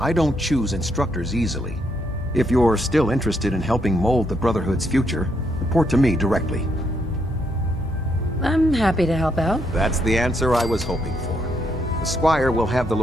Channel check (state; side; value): normal; both; correlation 0.75